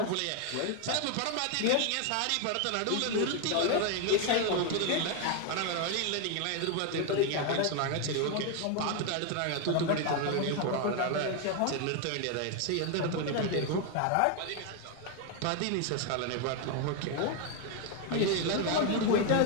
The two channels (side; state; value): both; different; correlation 0.01